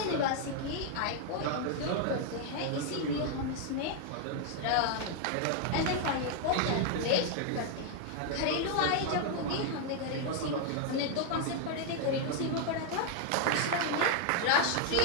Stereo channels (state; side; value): different; both; correlation 0.00